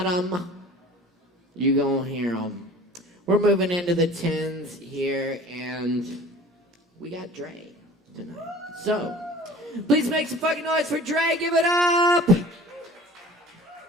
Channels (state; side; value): normal; both; correlation 0.44